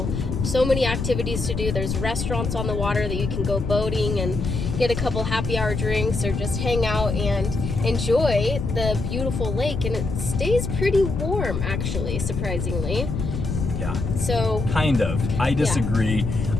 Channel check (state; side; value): noise; left; rumble, 3 dB below the sound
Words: So many activities to do. There's restaurants on the water that you can go boating and get a couple happy hour drinks, or just hang out and enjoy the beautiful lake. And it stays pretty warm, actually, surprisingly. Yeah. So kind of. I disagree. Yeah.